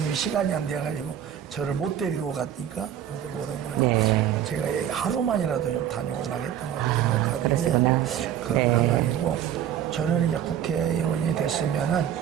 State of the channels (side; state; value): left; quieter; 10.1 dB